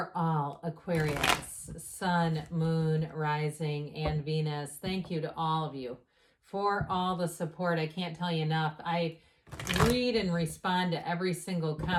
all Aquarius, Sun, Moon, Rising, and Venus. Thank you to all of you for all the support. I can't tell you enough. I read and respond to every single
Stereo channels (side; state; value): both; identical; correlation 1.00